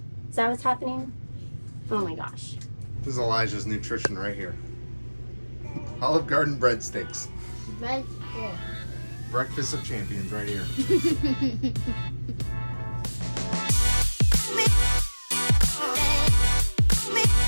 Is that what's happening? Oh my gosh. This is Elijah's nutrition right here. Olive Garden breadsticks. Breakfast of champions right here.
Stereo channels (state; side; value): inverted; both; correlation -1.00